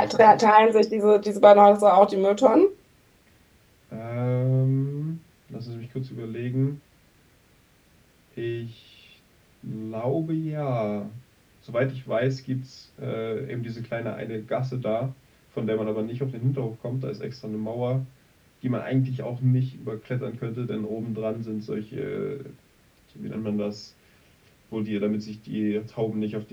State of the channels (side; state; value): both; identical; correlation 1.00